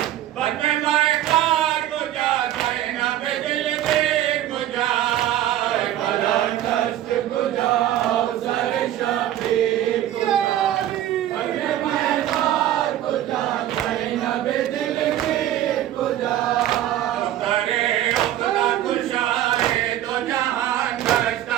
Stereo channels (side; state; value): left; quieter; 12.6 dB